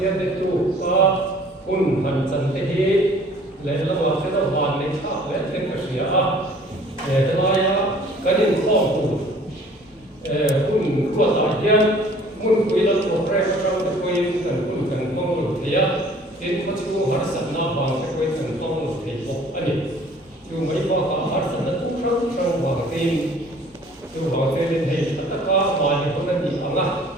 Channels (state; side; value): normal; both; correlation 0.53